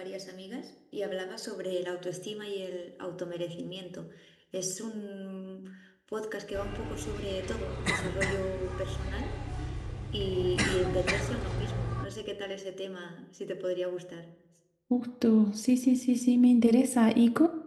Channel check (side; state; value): both; identical; correlation 1.00